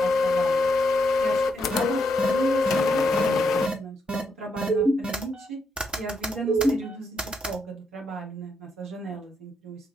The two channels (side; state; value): both; normal; correlation 0.79